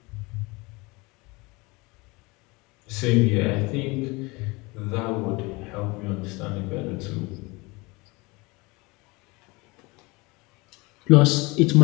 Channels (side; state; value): right; quieter; 25.0 dB